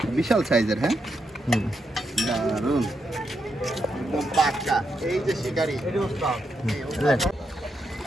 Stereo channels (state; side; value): normal; both; correlation 0.82